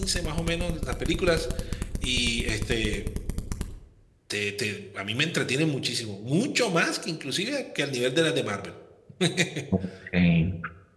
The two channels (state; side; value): identical; both; correlation 1.00